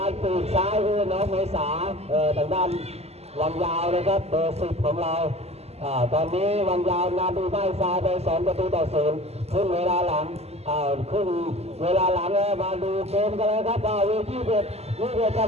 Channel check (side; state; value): left; late; 0.30 ms